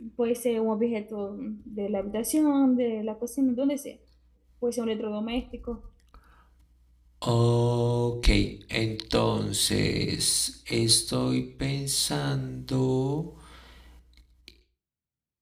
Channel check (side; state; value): both; identical; correlation 1.00